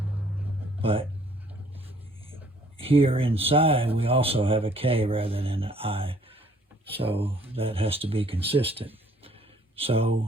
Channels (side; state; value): both; normal; correlation 0.60